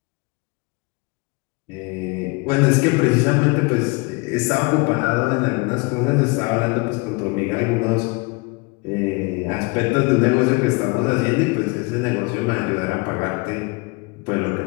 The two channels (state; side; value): quieter; right; 27.7 dB